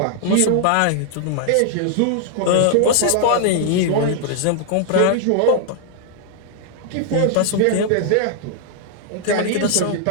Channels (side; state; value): both; different; correlation -0.01